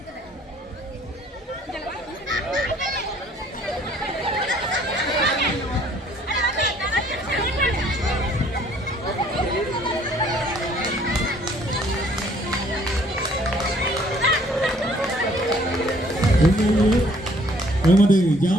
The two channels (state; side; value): normal; both; correlation 0.60